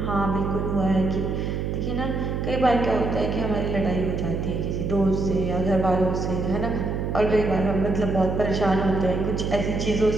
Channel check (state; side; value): noise; right; hum, 2 dB below the sound